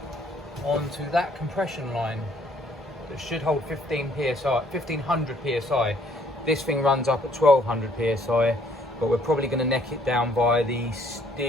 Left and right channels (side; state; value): both; normal; correlation 0.63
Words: onto that compression line that should hold 1500 psi. This thing runs up at 1200 psi, but we're probably going to neck it down by the